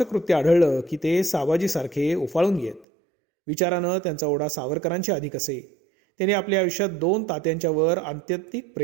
कृत्य आढळलं की ते साबाजीसारखे उफाळून येत. विचारानं त्यांचा ओढा सावरकरांच्या अधिक असे. त्यांनी आपल्या आयुष्यात 2 तात्यांच्या वर आत्यंतिक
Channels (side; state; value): left; drops out; at 2.9 s